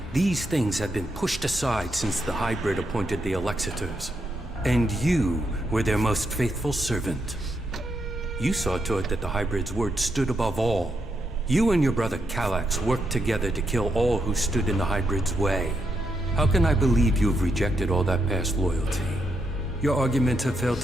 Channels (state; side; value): normal; both; correlation 0.81